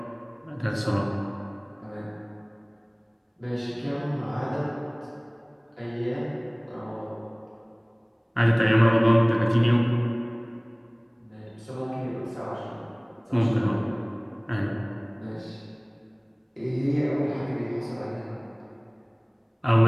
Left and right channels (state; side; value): identical; both; correlation 1.00